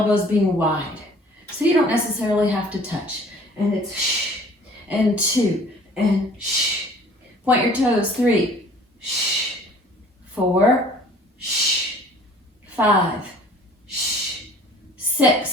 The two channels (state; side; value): normal; both; correlation 0.51